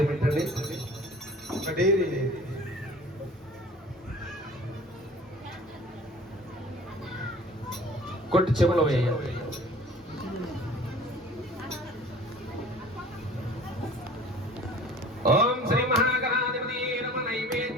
పెట్టండి. కొట్టి చెవులో వేయాలి. ఓం శ్రీ మహాగణాధిపతి నమ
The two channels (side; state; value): both; normal; correlation 0.46